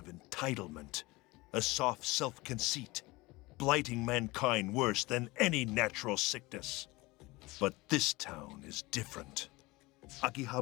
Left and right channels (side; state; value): right; quieter; 22.1 dB